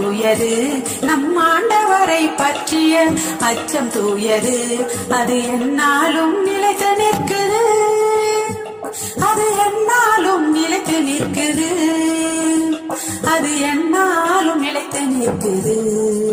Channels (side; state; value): both; identical; correlation 1.00